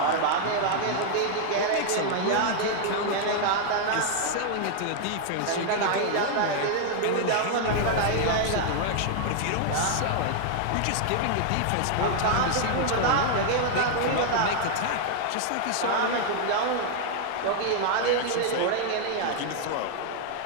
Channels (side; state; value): both; different; correlation 0.00